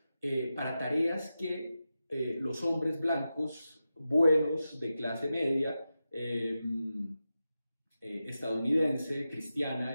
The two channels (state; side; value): inverted; both; correlation -0.91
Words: para tareas que los hombres blancos buenos de clase media, estadounidense, cristiana,